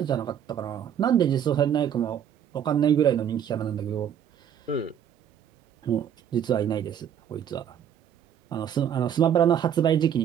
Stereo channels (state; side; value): quieter; left; 9.1 dB